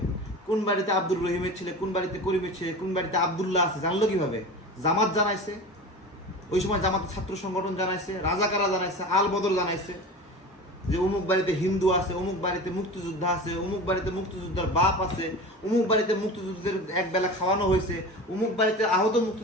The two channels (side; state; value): both; normal; correlation 0.32